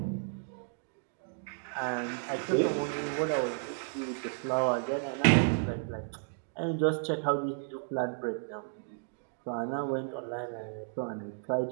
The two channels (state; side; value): silent; left; digital silence